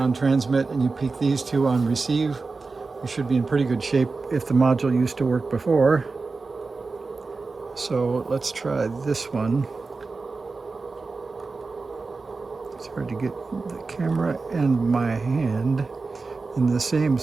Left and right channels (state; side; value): quieter; left; 4.1 dB